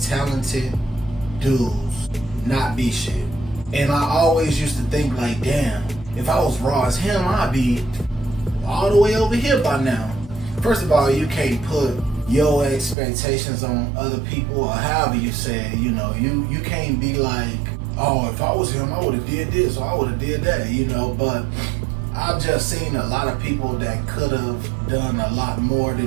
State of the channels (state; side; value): drops out; left; at 13.0 s